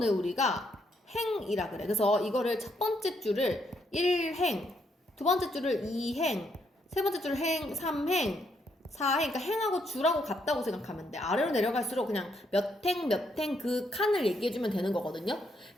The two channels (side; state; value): both; normal; correlation 0.75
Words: 우리가 행이라 그래. 그래서 이거를 첫 번째 줄을 1행, 두 번째 줄을 2행, 세 번째 줄을 행, 3행, 4행, 그러니까 행하고 줄하고 같다고 생각하면 돼. 아래로 내려갈수록 그냥 몇 행 그 칸을 얘기해주면 되는 거거든요.